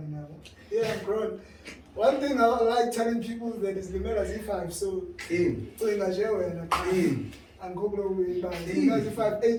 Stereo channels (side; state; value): both; identical; correlation 1.00